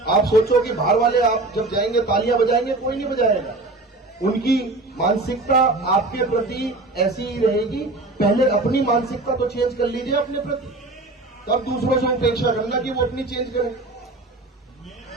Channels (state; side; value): quieter; left; 3.0 dB